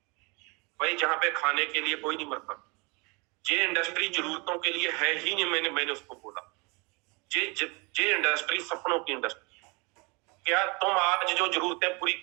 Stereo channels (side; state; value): left; quieter; 29.2 dB